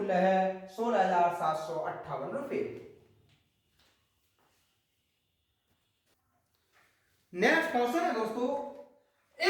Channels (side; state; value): both; identical; correlation 1.00